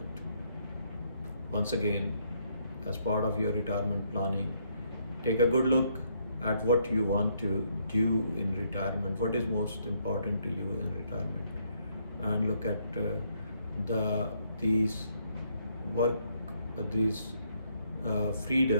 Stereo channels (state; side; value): inverted; both; correlation -0.71